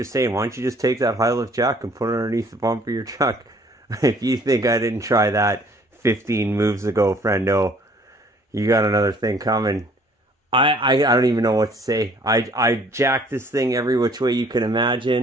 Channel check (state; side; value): normal; both; correlation 0.57